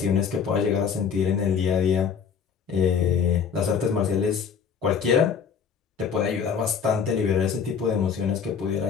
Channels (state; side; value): quieter; right; 6.8 dB